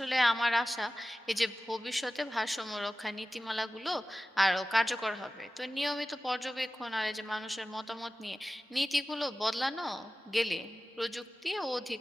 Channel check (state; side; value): normal; both; correlation 0.95